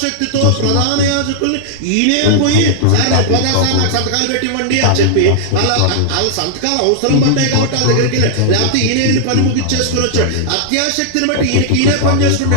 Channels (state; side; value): different; both; correlation -0.01